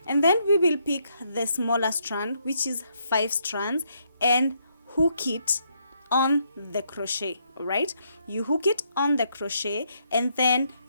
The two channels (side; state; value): both; inverted; correlation -0.75